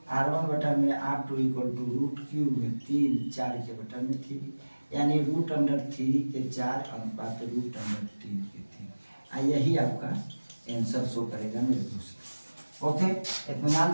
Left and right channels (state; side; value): inverted; both; correlation -1.00